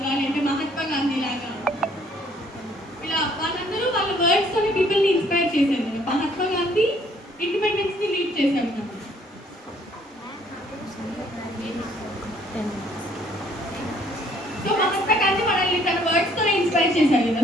లేదంటే మహాత్మా గాంధీ లాగా ఇలా వాళ్ళందరూ వాళ్ళ వర్డ్స్ తోని పీపుల్ని ఇన్స్పైర్ చేశారు కదా. మహాత్మా గాంధీ ఇండిపెండెన్స్ ని లీడ్ చేశారు కదా. సో మహాత్మా గాంధీ మనల్ని తన వర్డ్స్ తోనే ఇన్స్పైర్ చేశారు కదా.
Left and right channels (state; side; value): normal; both; correlation 0.62